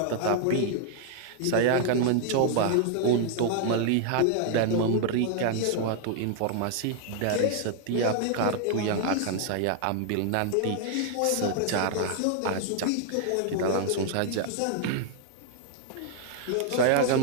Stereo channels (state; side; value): different; both; correlation 0.00